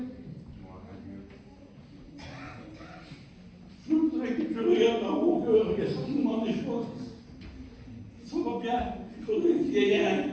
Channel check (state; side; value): identical; both; correlation 1.00